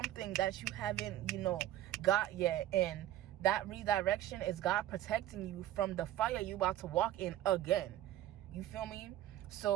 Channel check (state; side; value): quieter; left; 13.3 dB